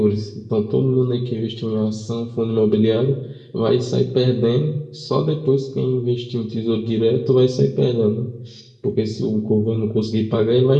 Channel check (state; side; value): identical; both; correlation 1.00